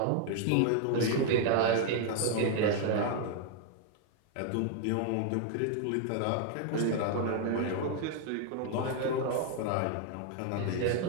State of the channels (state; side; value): different; both; correlation 0.00